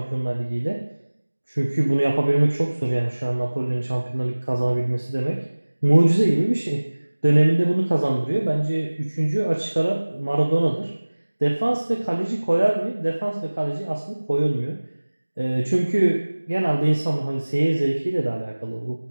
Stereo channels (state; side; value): inverted; both; correlation -1.00